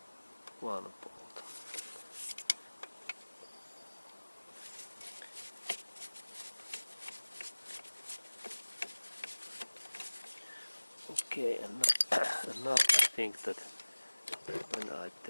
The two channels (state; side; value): inverted; both; correlation -1.00